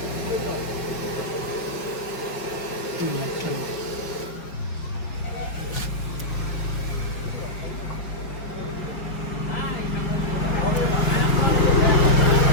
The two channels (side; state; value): right; late; 5.7 ms